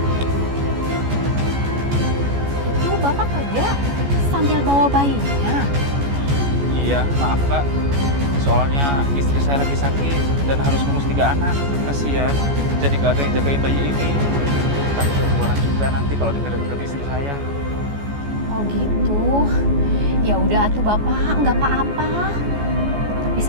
Itu Bapak kerja sambil bawa bayinya. Iya, maaf Mbak. Soalnya istri saya saya lagi sakit dan harus ngurus 3 anak. Kasihan, jadi gak ada yang jagain bayi ini. Tak keluaran juga nanti kalau denger-denger istri saya. Oh gitu. Ya udah atuh Bapak, nggak apa-apa. Tapi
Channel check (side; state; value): left; late; 14 ms